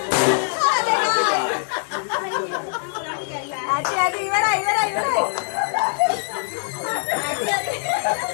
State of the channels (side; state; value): right; silent; digital silence